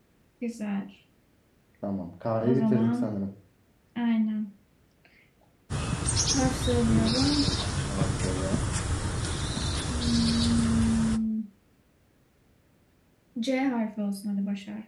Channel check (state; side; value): identical; both; correlation 1.00